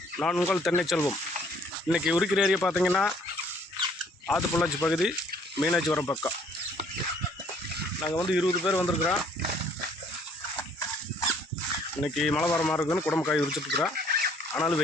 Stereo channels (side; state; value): both; normal; correlation 0.61